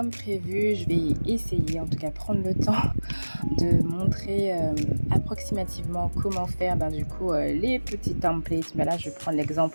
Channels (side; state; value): both; inverted; correlation -1.00